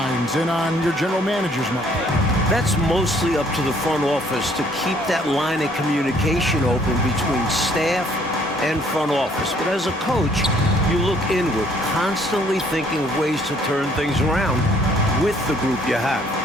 and on your general manager's mind? That's mostly up to the front office to keep that line of communication open between staff and front office. But as a coach, you look inward, constantly thinking of ways to turn things around with the group you have.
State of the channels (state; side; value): normal; both; correlation 0.62